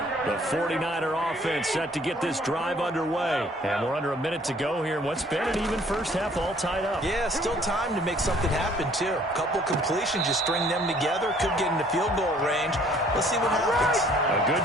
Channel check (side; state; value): both; normal; correlation 0.58